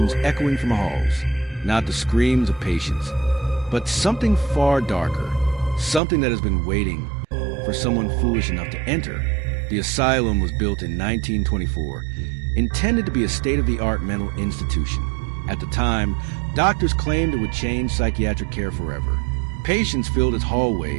echoing from the halls. Not the screams of patients, but something far darker, something that has been waiting for someone foolish enough to enter. The asylum was built in 1924, intended to be a state-of-the-art mental institution. At the time, doctors claimed it would change psychiatric care forever. Patients filled its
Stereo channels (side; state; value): left; drops out; at 6.0 s